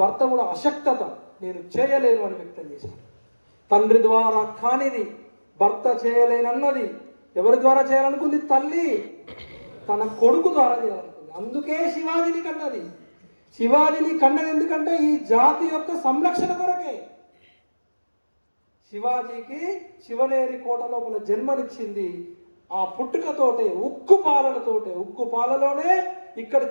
భర్త కూడా అశక్తత, నేను చేయలేను అని వ్యక్తం చేశాడు. తండ్రి ద్వారా కానిది, భర్త చేయలేనన్నది ఎవరి ద్వారా చేయాలనుకుంది? తల్లి తన కొడుకు ద్వారా చేయాలనుకుంది. అందుకే శివాజీని కన్నది. శివాజీని కన్నది ఎందుకంటే ఈ జాతి యొక్క సంరక్షణ కొరకే. శివాజీకి శివనేరి కోట లోపల జన్మనిచ్చింది. ఆ పుట్టుకతోటే, ఉక్కు పాలలోనే ఇక్కడ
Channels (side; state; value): both; inverted; correlation -1.00